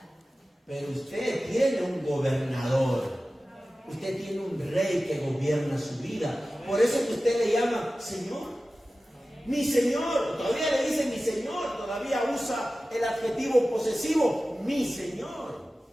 Pero usted tiene un gobernador. Usted tiene un rey que gobierna su vida. Por eso es que usted le llama Señor. Mi Señor. Todavía le dice mi Señor. Todavía usa el adjetivo posesivo. Mi Señor.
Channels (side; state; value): both; normal; correlation 0.95